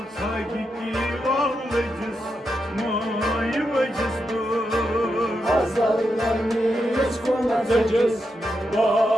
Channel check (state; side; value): normal; both; correlation 0.85